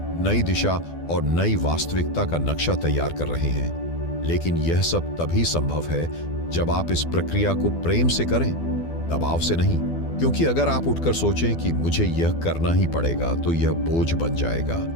नई दिशा और नई वास्तविकता का नक्शा तैयार कर रहे हैं। लेकिन यह सब तभी संभव है जब आप इस प्रक्रिया को प्रेम से करें, दबाव से नहीं। क्योंकि अगर आप उठकर सोचें कि मुझे यह करना ही पड़ेगा तो यह बोझ बन जाएगा।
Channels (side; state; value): right; late; 12 ms